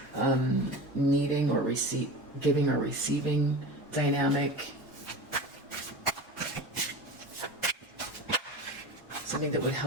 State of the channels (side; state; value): both; normal; correlation 0.31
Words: needing or giving or receiving dynamic. something that would